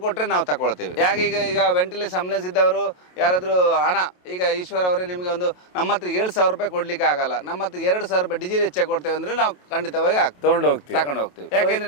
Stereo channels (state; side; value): late; right; 28 ms